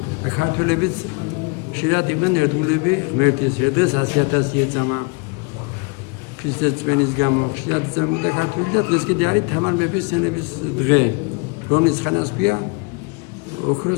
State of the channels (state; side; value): quieter; right; 29.9 dB